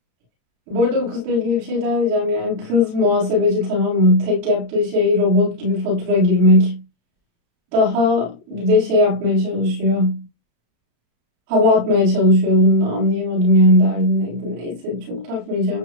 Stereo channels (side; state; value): left; late; 34 ms